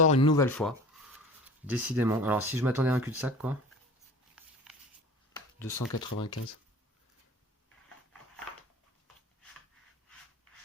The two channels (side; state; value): both; normal; correlation 0.41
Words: une nouvelle fois. Décidément. Alors si je m'attendais à un cul-de-sac, quoi. 295.